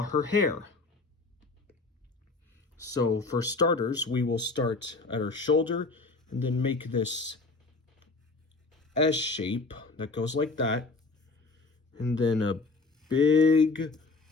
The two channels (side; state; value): right; quieter; 3.7 dB